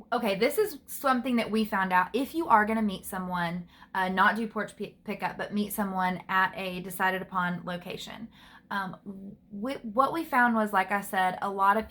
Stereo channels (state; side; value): identical; both; correlation 1.00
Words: Okay, this is something that we found out. If you are going to meet someone, not do porch pickup, but meet someone at a decided upon location. What we found was, like I said, a lot of